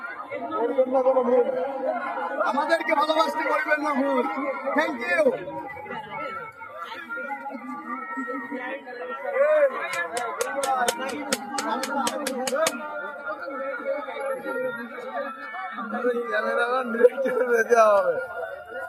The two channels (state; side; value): identical; both; correlation 1.00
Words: আমাদেরকে ভালোবাসতে করবেন না ভুল। Thank you. ক্যামেরাম্যান ডিরেক্টর হবে।